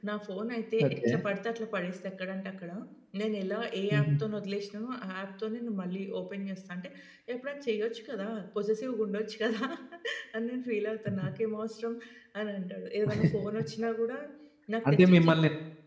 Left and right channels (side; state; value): both; identical; correlation 1.00